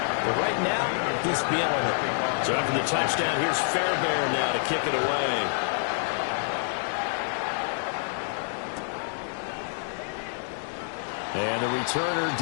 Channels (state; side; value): silent; right; digital silence